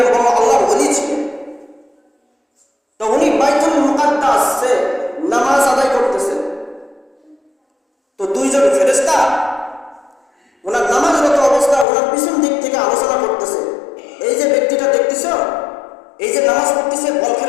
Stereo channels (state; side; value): drops out; right; at 11.9 s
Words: আল্লাহর ওলি ছিলেন। তো উনি বাইতুল মুকাদ্দাসে নামাজ আদায় করতেছেন। তো দুইজন ফেরেশতা ওনার নামাজরত অবস্থা ওনার পিছন দিক থেকে আলোচনা করতেছে। এই যে ব্যক্তিটা দেখতেছ, এই যে নামাজ পড়তেছে,